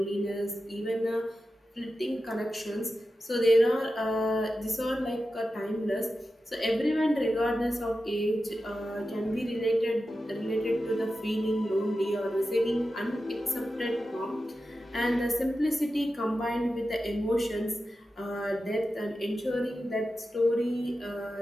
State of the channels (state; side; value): normal; both; correlation 0.92